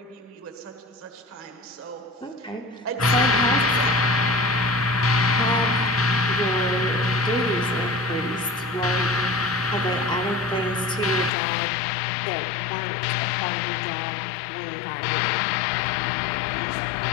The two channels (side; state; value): right; drops out; at 11.3 s